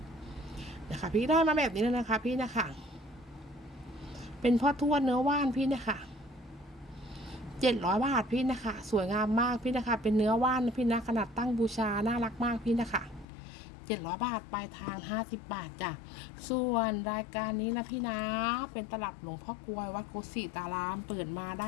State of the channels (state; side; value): drops out; right; at 13.2 s